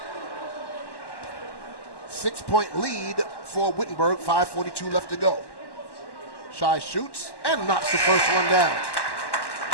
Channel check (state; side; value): late; right; 1.1 ms